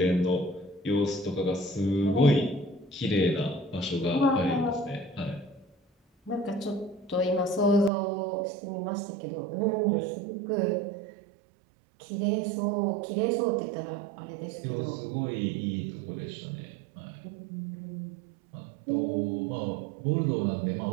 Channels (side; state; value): left; drops out; at 7.9 s